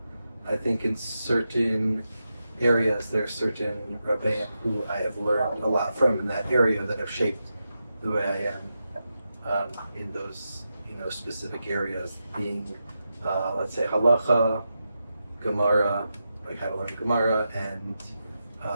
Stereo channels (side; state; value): both; inverted; correlation -0.88